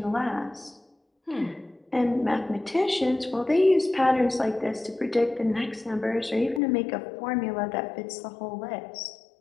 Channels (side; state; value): right; drops out; at 6.6 s